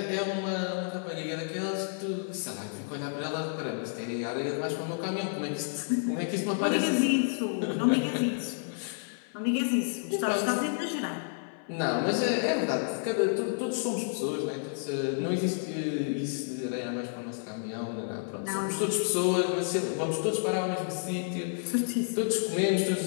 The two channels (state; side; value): silent; right; 58 dB below the other